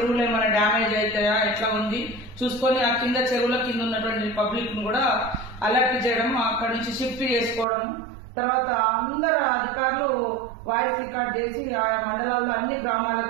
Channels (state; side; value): drops out; left; at 7.7 s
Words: ఏమైనా డ్యామేజ్ అవుతాయా, ఎట్లా ఉంది చూసుకొని ఆ కింద చెరువుల కింద ఉన్నటువంటి పబ్లిక్ ను కూడా అలర్ట్ చేయడం, అక్కడి నుంచి షిఫ్ట్ చేసుకోవడం. తర్వాత అందరు అధికారులు వాయిస్ రికార్డ్ చేసి ఆ మండలాల్లో అన్ని